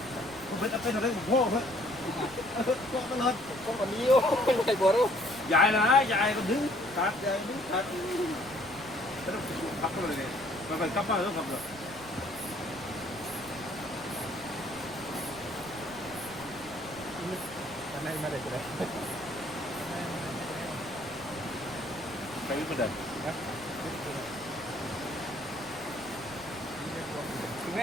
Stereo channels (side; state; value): right; noise; rumble, 19 dB below the sound